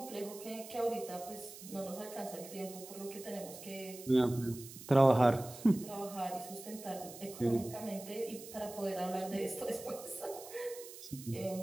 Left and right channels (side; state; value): right; noise; hiss, 14 dB below the sound